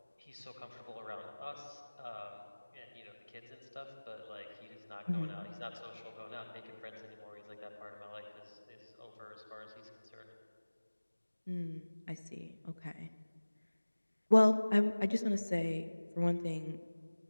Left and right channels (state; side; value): inverted; both; correlation -1.00